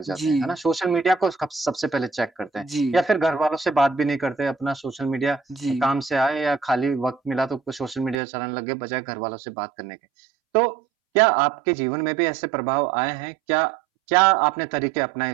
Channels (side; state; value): left; drops out; at 8.2 s